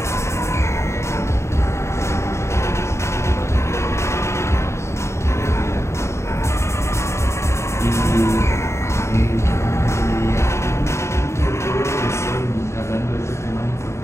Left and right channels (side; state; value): right; late; 0.13 ms